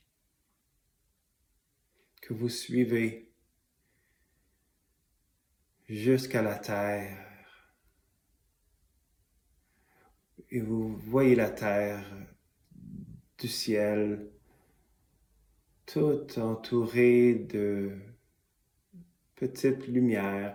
que vous suivez jusqu'à la terre. Et vous voyez la terre du ciel, toute entourée de petites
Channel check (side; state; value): both; identical; correlation 1.00